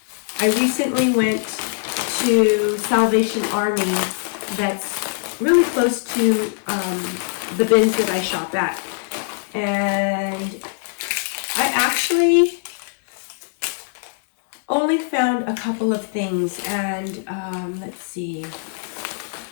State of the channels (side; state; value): right; silent; digital silence